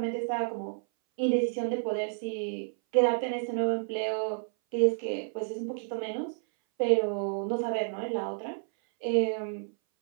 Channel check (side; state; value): left; silent; 58 dB below the other